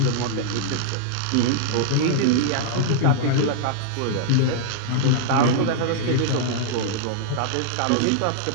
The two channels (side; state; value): both; different; correlation -0.02